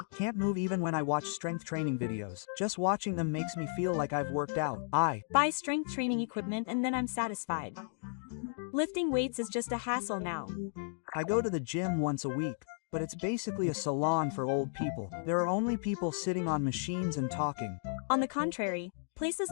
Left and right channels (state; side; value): silent; right; digital silence